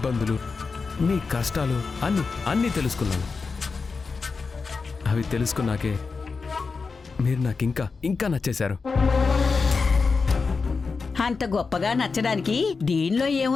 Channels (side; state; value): right; quieter; 4.6 dB